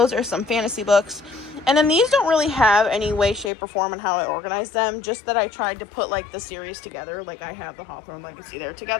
are some fantasy books. And then these don't really have any way, shape, or form on how I organize them. Just that I tried to put like the series together. Like I have the Hawthorne Legacy there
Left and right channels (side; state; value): right; drops out; at 3.5 s